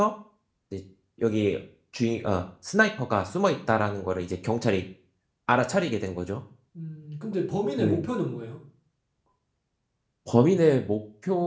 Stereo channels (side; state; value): both; identical; correlation 1.00